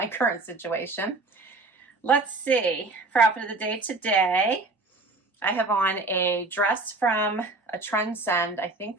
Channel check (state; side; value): quieter; left; 3.3 dB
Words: current situation. Let's see, for outfit of the day today, I have on a dress from a Trendsend, I